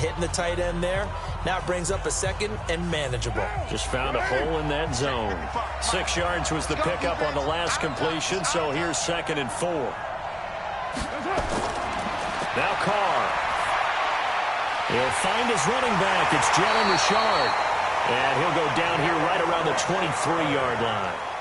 the tight end there. Now it brings up a second and manageable. Just found a hole in that zone. 6 yards was the pickup on the last completion, so here's 2nd and 4. Now Carr. He'll find his running back. It's Jalen Richard. And he'll go down here right around the 23-yard line.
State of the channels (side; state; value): both; identical; correlation 1.00